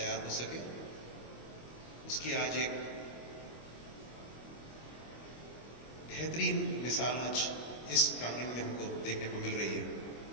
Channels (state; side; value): late; right; 25 ms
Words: हो सके, उसकी आज एक बेहतरीन मिसाल आज इस प्रांगण में हमको देखने को मिल रही है।